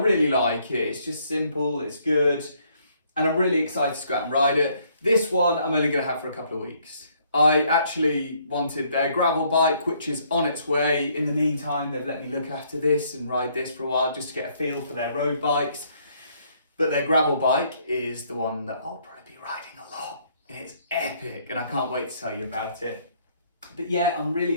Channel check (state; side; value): inverted; both; correlation -0.67